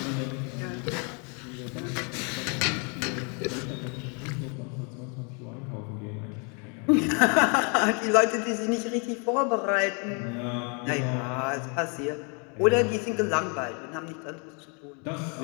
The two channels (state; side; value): quieter; right; 36.2 dB